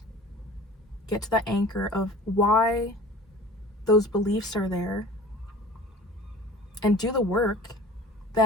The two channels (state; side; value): normal; both; correlation 0.43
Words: get to the anchor of why those beliefs are there, and do the work,